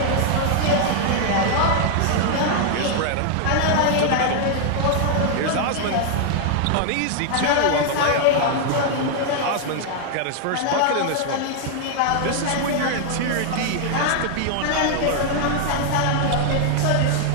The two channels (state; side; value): different; both; correlation 0.00